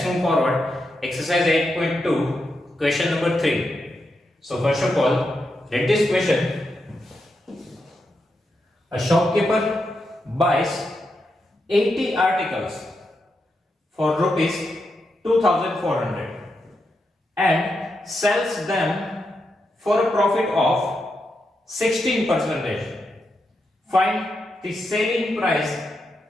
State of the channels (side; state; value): both; normal; correlation 0.85